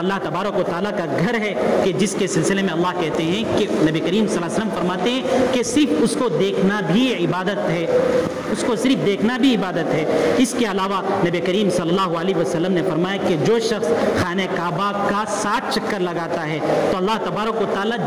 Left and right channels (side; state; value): both; identical; correlation 1.00